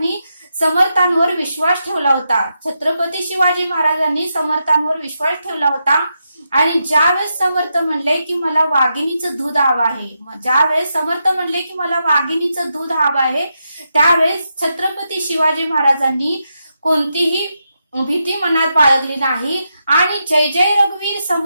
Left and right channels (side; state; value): both; inverted; correlation -0.85